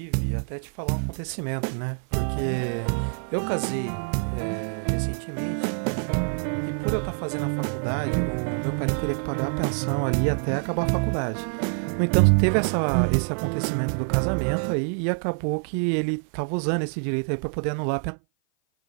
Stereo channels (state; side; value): silent; left; 56 dB below the other